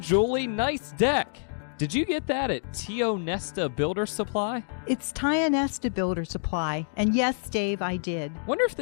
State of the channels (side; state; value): right; silent; digital silence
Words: nice deck! Did you get that at Tio Nesta Builder Supply? It's Tio Nesta Builder Supply, and yes, Dave, I did. Wonder if